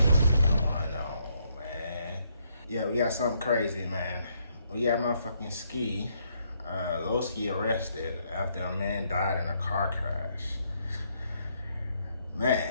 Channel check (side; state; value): both; inverted; correlation -0.73